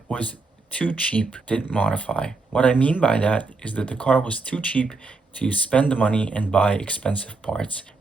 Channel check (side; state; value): left; quieter; 3.8 dB